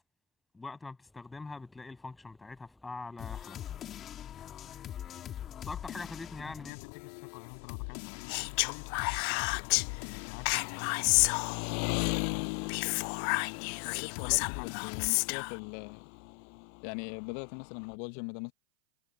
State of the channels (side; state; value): right; drops out; at 6.7 s